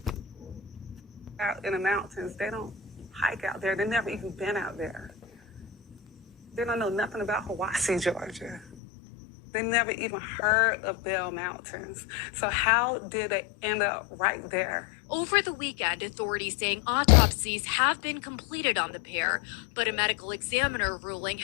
Out in the mountains, they don't hike out there. They've never even been out there. They don't know nothing about Hiwassee, Georgia. They never even heard of Bell Mountains. So how did they end up right there? Over the weekend, authorities saying autopsies have been completed on the pair, but a medical examiner ruling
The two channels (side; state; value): right; drops out; at 8.7 s